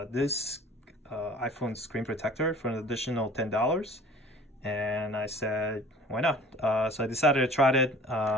this iPhone screen protector for an additional $10. And I said, why not? So I decided to try it.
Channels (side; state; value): both; normal; correlation 0.47